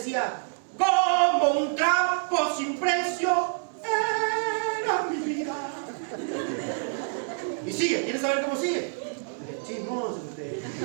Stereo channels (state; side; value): silent; left; digital silence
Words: como un trapo sin precio era mi vida. Y sigue, ¿quieres saber cómo sigue? Chismoso usted.